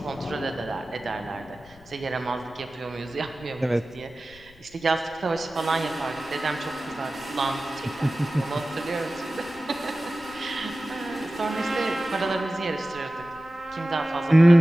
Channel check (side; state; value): left; noise; rumble, 25 dB below the sound